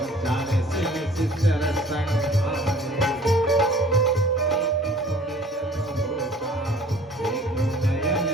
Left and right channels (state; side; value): normal; both; correlation 0.50